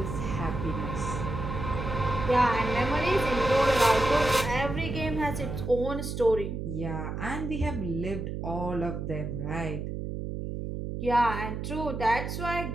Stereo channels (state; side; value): noise; right; hum, 5 dB below the sound